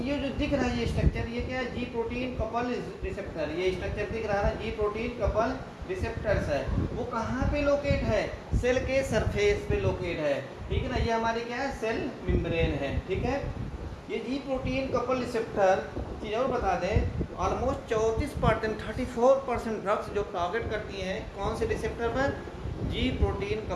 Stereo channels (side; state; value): both; identical; correlation 1.00